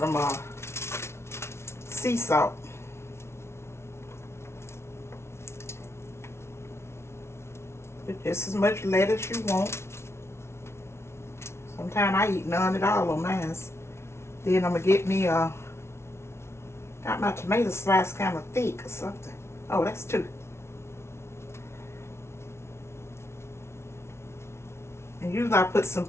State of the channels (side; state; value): right; late; 0.13 ms